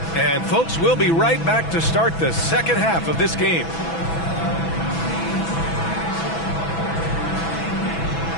And folks, we'll be right back to start the second half of this game.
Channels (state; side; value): late; right; 6.1 ms